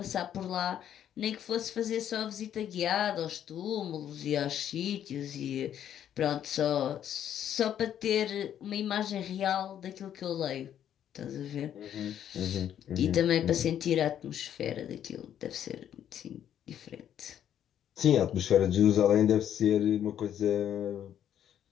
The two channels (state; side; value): quieter; right; 10.1 dB